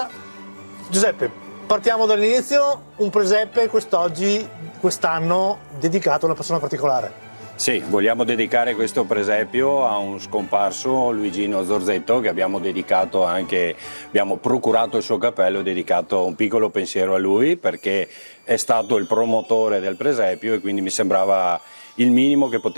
Giuseppe, partiamo dall'inizio, un presepe quest'anno dedicato a una persona particolare. Sì, vogliamo dedicare questo presepio a un scomparso, Luigino Zorzetto, che abbiamo procurato il suo cappello e dedicato un piccolo pensiero a lui perché è stato il promotore del presepio e quindi mi sembrava il minimo che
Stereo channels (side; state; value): both; inverted; correlation -1.00